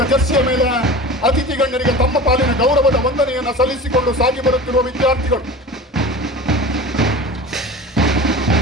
ಜರ್ಸಿಯ ಮೇಲೆ ಅತಿಥಿ ಗಣ್ಯರಿಗೆ ತಮ್ಮ ಪಾಲಿನ ಗೌರವದ ವಂದನೆಯನ್ನು ಸಲ್ಲಿಸಿಕೊಂಡು ಸಾಗಿ ಬರುತ್ತಿರುವ ವಿದ್ಯಾರ್ಥಿಗಳು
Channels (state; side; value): normal; both; correlation 0.35